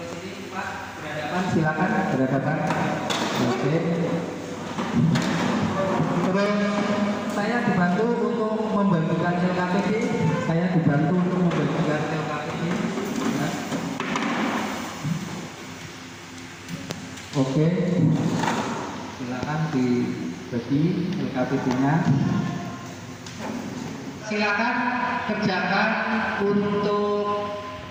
ini Pak berhadapan, silakan berhadapan. Oke. Terus saya dibantu untuk membagikan LKPD. Saya dibantu untuk membagikan LKPD. Ya. Oke, silakan dibagi LKPD-nya. Silakan kerjakan untuk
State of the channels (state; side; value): identical; both; correlation 1.00